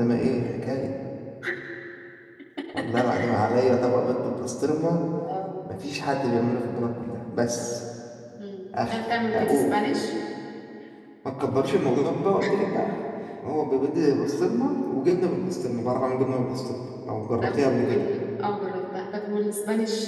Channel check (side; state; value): both; identical; correlation 1.00